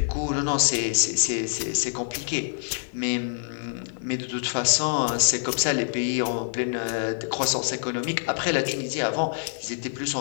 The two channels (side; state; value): right; silent; digital silence